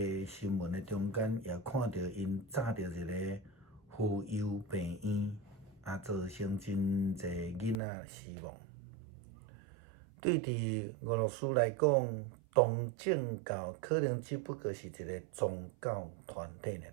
新闻的中间，也看到因炸着一个妇幼病院，造成真侪囡仔死亡。对伫俄罗斯来讲，东正教可能只不过是一个宗教团体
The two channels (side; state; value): left; drops out; at 7.8 s